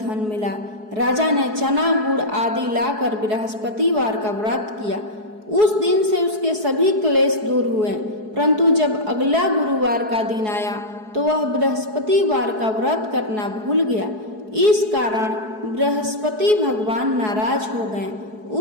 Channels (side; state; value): left; late; 4.7 ms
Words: मिला। राजा ने चना गुड़ आदि लाकर बृहस्पतिवार का व्रत किया। उस दिन से उसके सभी क्लेश दूर हुए। परंतु जब अगला गुरुवार का दिन आया तो वह बृहस्पतिवार का व्रत करना भूल गया। इस कारण बृहस्पति भगवान नाराज हो गए।